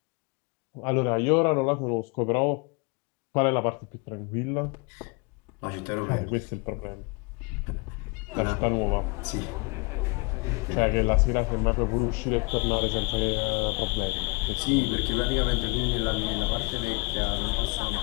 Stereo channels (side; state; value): right; quieter; 29.3 dB